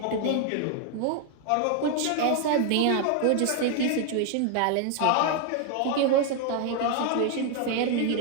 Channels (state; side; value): different; both; correlation 0.00